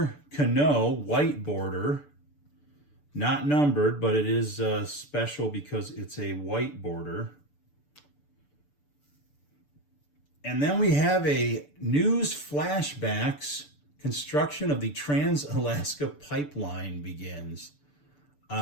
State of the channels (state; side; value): late; right; 6.8 ms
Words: Cano white border, not numbered, but it is special because it's a white border. And then we have a news flashbacks. Construction of the Trans-Alaska Pipeline begins.